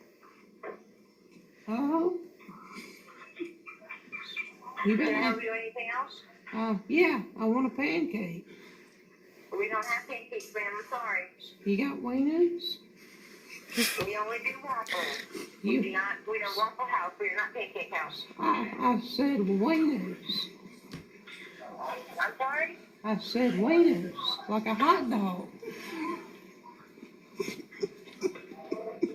Oh. You Can I better. help you do anything else? Yeah, I want a pancake. We don't have pancakes, ma'am. I'm sorry. You got wieners? We only do waffles. You. We're a Waffle House. We're not Pancake House. I said wieners. I'm sorry? I said wieners, like a hot dog.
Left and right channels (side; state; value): both; identical; correlation 1.00